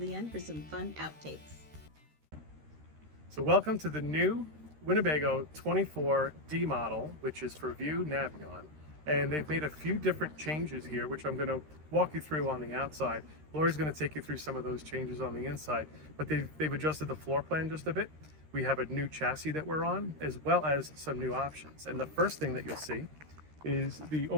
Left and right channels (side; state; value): left; late; 13 ms